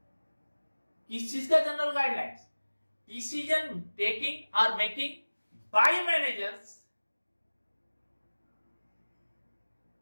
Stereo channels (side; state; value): both; inverted; correlation -1.00